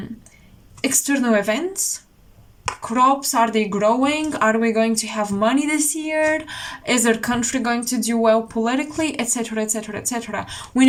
external events. Crops, are they growing? Are we going to have money this year? Is our country going to do well politically? Etc, etc, etc. When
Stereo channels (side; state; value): both; identical; correlation 1.00